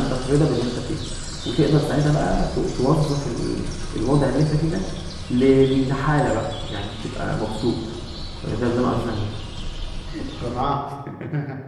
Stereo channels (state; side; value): identical; both; correlation 1.00